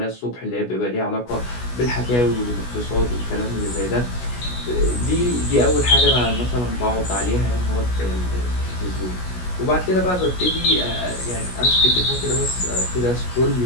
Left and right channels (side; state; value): right; late; 16 ms